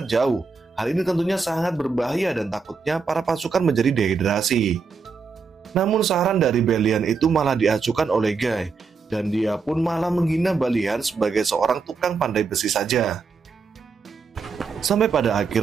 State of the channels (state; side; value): quieter; left; 4.9 dB